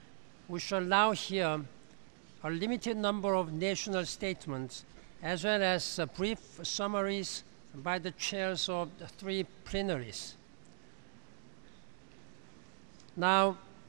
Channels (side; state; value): left; silent; digital silence